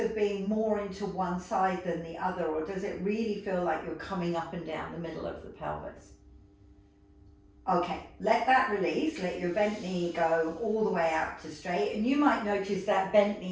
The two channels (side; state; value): both; identical; correlation 1.00